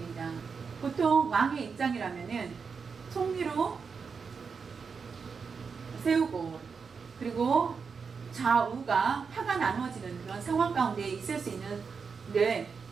보통 왕의 입장이라면은 총리로 세우고 그리고 좌우가 파가 나누어지는 그런 상황 가운데 있을 수 있는데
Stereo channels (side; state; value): left; quieter; 5.5 dB